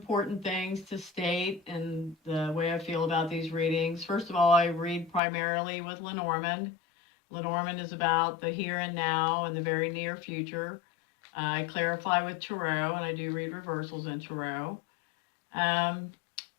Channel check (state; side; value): drops out; right; at 5.2 s